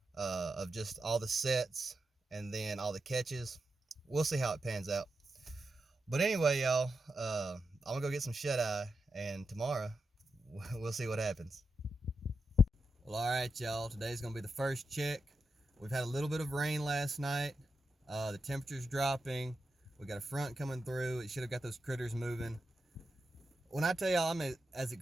of just all the sets and then all the catches. We'll see how it pans out. But anyway, y'all, I'm gonna go get some shut-eye, and tomorrow we'll see what happens. Well, all right, y'all. Today's gonna be the first check. We've had a little bit of rain last night. The temperature's dropping. We got a front coming through. It should have got those critters moving. When I tell y'all I'm as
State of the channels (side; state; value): both; normal; correlation 0.88